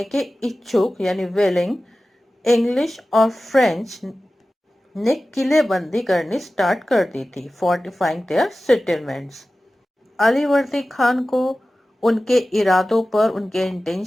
के इच्छुक यानी विलिंग इंग्लिश और फ्रेंच ने किलेबंदी करनी स्टार्ट कर दी थी, fortifying their settlements. Alivardi Khan को उनके इरादों पर, उनके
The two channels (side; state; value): both; normal; correlation 0.96